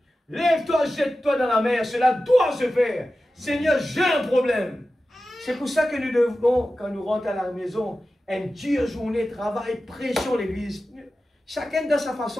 lève-toi, jette-toi dans la mer, cela doit se faire. Seigneur, j'ai un problème. C'est pour ça que nous devons, quand nous rentrons à la maison, une dure journée, travail, pression l'église. Chacun dans sa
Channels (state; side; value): normal; both; correlation 0.94